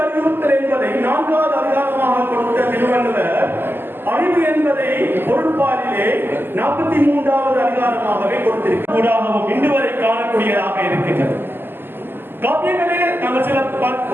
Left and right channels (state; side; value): late; left; 0.098 ms